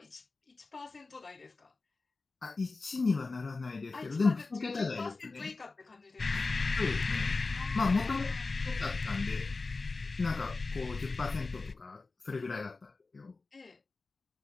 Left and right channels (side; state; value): right; quieter; 3.8 dB